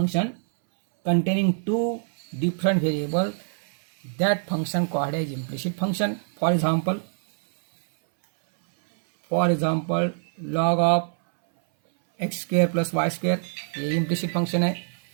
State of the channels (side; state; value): left; silent; 59 dB below the other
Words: containing two different variable, that function called as implicit function. For example log of x square plus y square, ये इम्प्लिसिट फंक्शन है